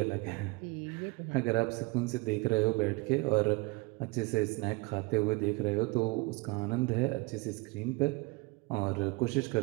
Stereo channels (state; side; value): quieter; left; 25.2 dB